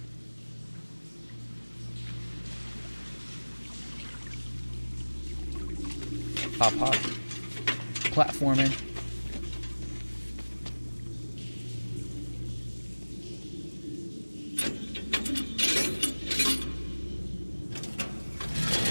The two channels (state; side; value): inverted; both; correlation -1.00